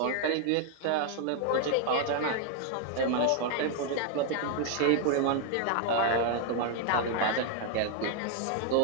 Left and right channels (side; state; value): both; different; correlation 0.00